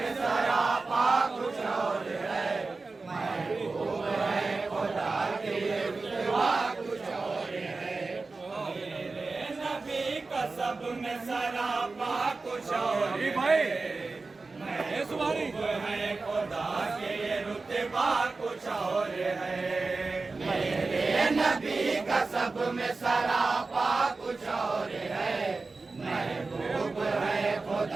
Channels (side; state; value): left; quieter; 3.8 dB